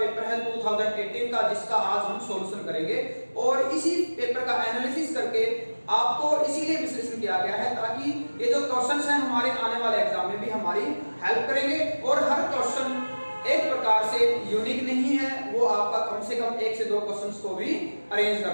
है 2018 का, जिसका आज हम सॉल्यूशन करेंगे। और इसी पेपर का एनालिसिस करके आपको इसीलिए विश्लेषण किया गया है ताकि ये जो क्वेश्चंस हैं हमारे आने वाले एग्जाम में भी हमारी हेल्प करेंगे। और हर क्वेश्चन एक प्रकार से यूनिक नहीं है, वो आपका कम से कम 1 से 2 क्वेश्चंस को भी अरेंज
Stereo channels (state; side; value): inverted; both; correlation -1.00